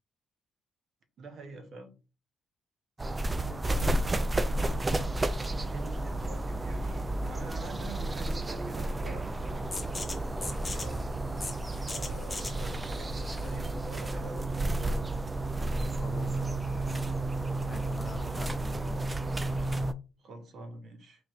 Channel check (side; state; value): both; normal; correlation 0.91